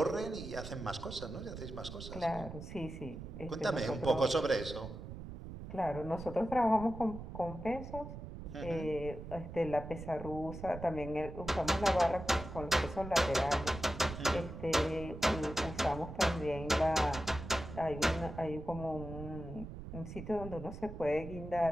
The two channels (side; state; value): right; noise; rumble, 10 dB below the sound